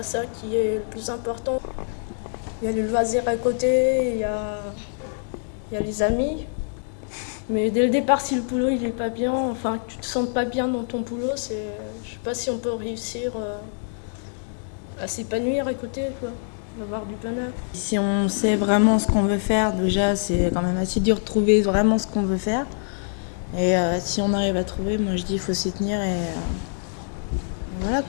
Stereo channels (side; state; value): right; silent; digital silence